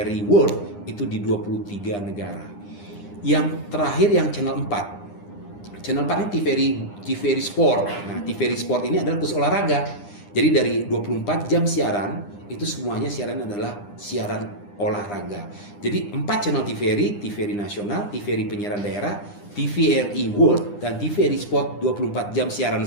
World itu di 23 negara. Yang terakhir yang channel 4. Channel 4 ini TVRI Sport. Nah, TVRI Sport ini adalah khusus olahraga. Jadi dari 24 jam siaran, itu semuanya siaran adalah siaran olahraga. Jadi 4 channel TVRI nasional, TVRI penyiaran daerah, TVRI World, dan TVRI Sport 24 jam siaran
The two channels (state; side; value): late; right; 9.9 ms